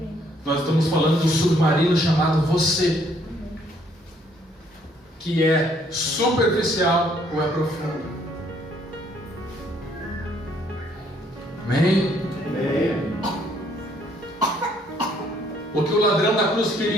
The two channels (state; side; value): normal; both; correlation 0.66